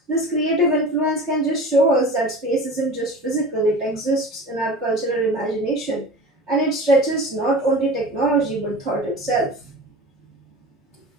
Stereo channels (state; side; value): normal; both; correlation 0.36